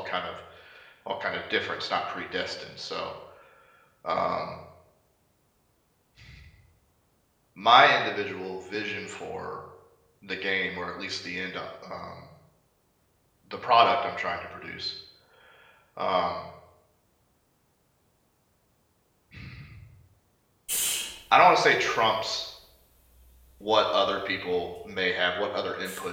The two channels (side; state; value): both; identical; correlation 1.00